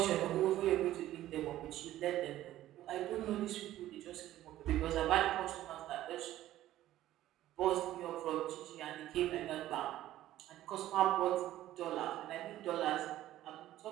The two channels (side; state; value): left; quieter; 14.0 dB